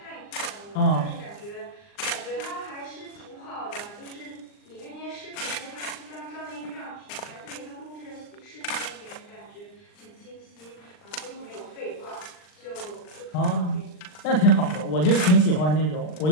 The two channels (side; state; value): right; late; 39 ms